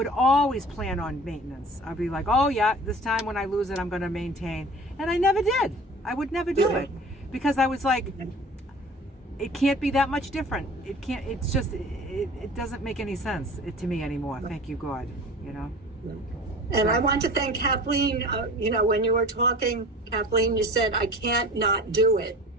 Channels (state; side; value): normal; both; correlation 0.41